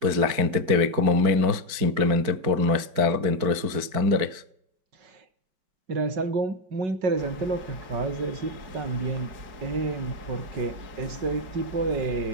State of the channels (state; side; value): late; left; 4.6 ms